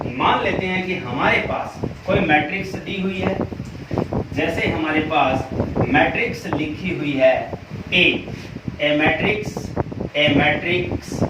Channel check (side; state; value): both; identical; correlation 1.00